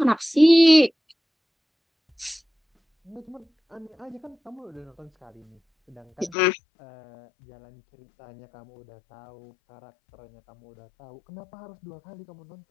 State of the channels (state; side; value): drops out; right; at 6.4 s